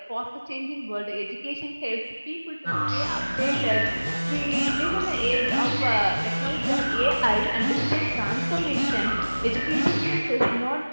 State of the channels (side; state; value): both; inverted; correlation -1.00